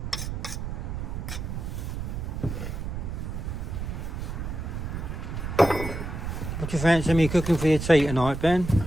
What do you fancy me cooking for your tea tonight, Ben?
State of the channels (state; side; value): noise; right; rumble, 5 dB below the sound